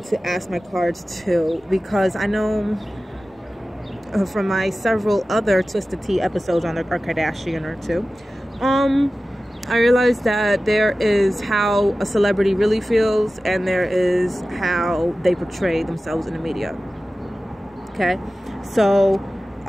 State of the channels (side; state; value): both; normal; correlation 0.95